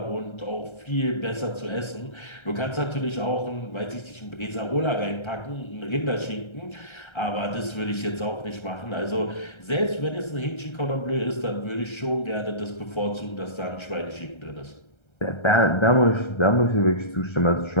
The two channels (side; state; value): right; late; 1.3 ms